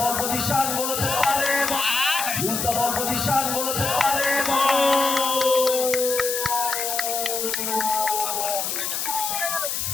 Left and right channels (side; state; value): left; noise; hiss, 2 dB below the sound